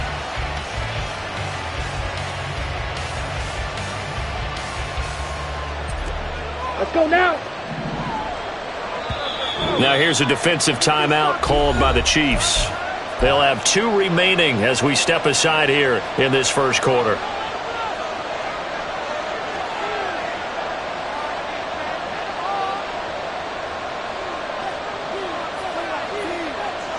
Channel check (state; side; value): identical; both; correlation 1.00